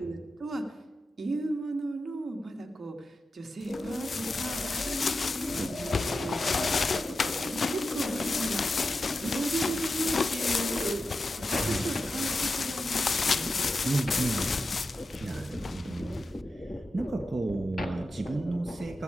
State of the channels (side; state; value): both; normal; correlation 0.90